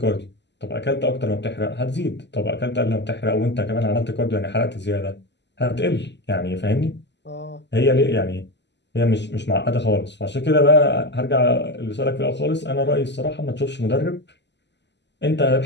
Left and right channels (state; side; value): late; right; 0.51 ms